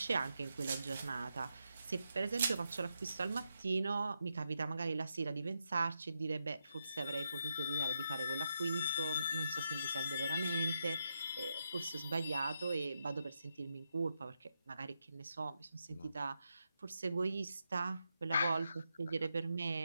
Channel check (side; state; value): both; inverted; correlation -0.84